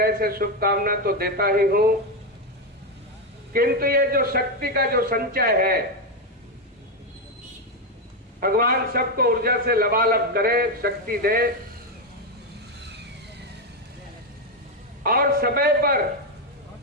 से शुभकामना तो देता ही हूं, किंतु ये जो शक्ति का जो संचय है, भगवान सबको ऊर्जा से लबालब करे, शक्ति दे, और समय पर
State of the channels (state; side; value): normal; both; correlation 0.07